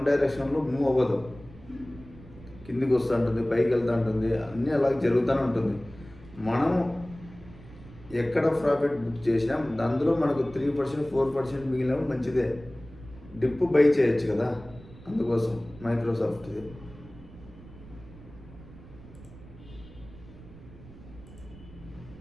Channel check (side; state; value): right; noise; rumble, 19 dB below the sound